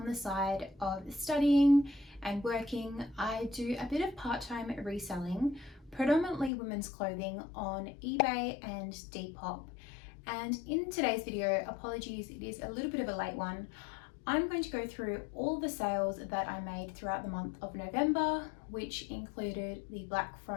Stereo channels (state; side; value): drops out; right; at 6.5 s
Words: the side of studying and working, I do a bit of part-time reselling, predominantly women's clothing on eBay and Depop. And in today's video, apologies, it is a little bit of a late one. I'm going to go through all the sales that I made throughout the month of November, which included the Black